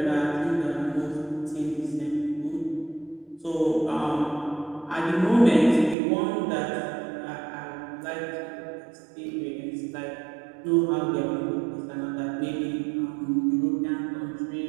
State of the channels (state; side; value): drops out; left; at 6.0 s